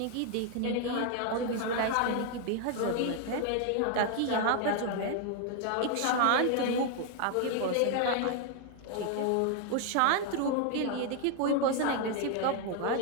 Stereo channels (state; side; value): different; both; correlation 0.00